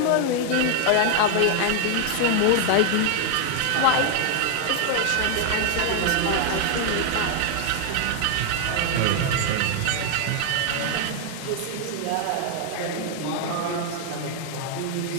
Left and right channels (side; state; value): both; different; correlation 0.00